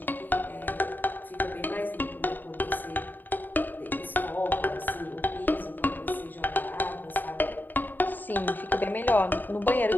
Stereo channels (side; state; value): right; late; 0.090 ms